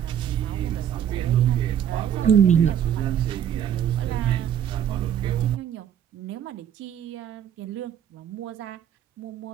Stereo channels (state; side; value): quieter; left; 9.5 dB